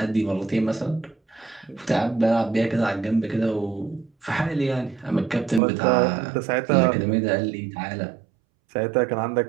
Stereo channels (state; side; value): drops out; left; at 5.6 s